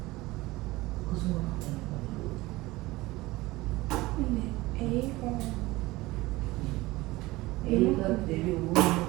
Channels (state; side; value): quieter; left; 20.0 dB